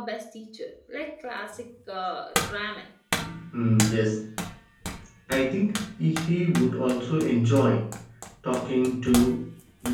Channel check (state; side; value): identical; both; correlation 1.00